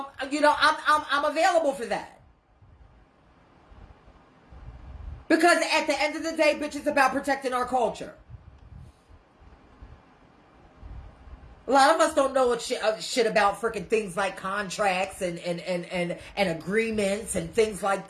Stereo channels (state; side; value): identical; both; correlation 1.00